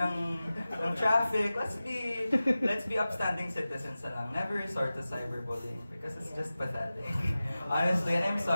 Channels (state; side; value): inverted; both; correlation -0.96